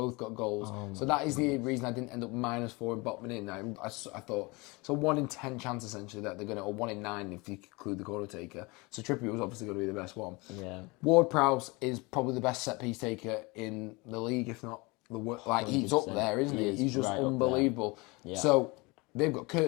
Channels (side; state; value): right; quieter; 25.7 dB